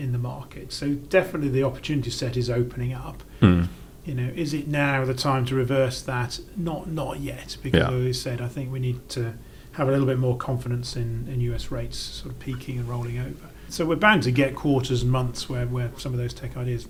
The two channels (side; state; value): both; identical; correlation 1.00